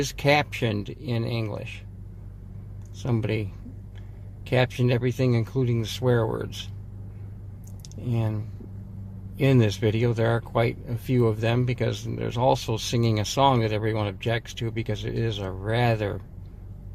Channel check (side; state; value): both; identical; correlation 1.00